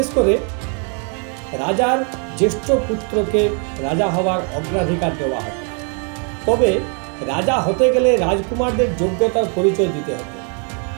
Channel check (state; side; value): quieter; left; 39.2 dB